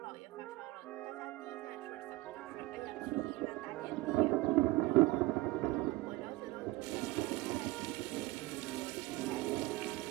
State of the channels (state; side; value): quieter; left; 19.3 dB